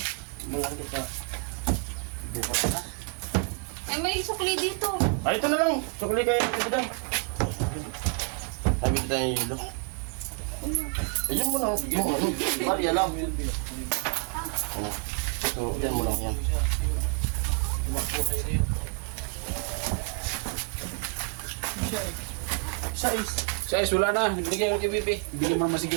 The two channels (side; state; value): left; quieter; 38.4 dB